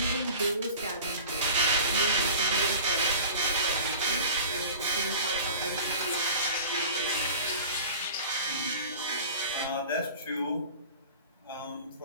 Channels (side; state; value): both; inverted; correlation -0.39